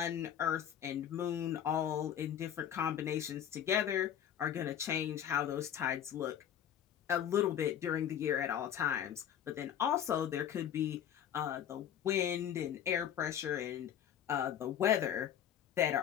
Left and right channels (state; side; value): quieter; right; 9.7 dB